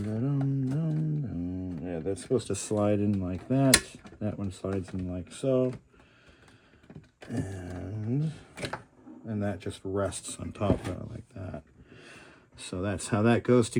Yeah, that's supposed to slide in like that. That one slides in like so. And that just rests on top of it like that. So that's how that goes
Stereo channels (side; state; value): both; identical; correlation 1.00